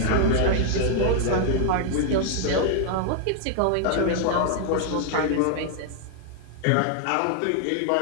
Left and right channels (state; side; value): different; both; correlation 0.00